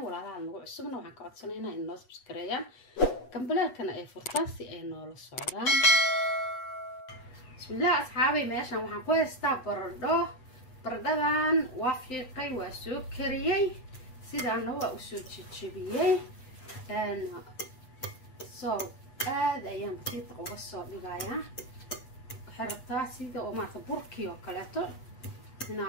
لها الموضوع السمنا وحان كعدسنينا إنو سبسكريان كمبليركنا أي فرطاسي أي نول السعودان. بسم الله أصحابي ماشان وحان كويستا بردان وافيقي وسكريي سيدان هو أسو تشبيي سو aad ayaan batiiq uga soo dhigayaa xirtaa sida oo maanta burkii oo kaleeto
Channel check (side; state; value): right; late; 8.2 ms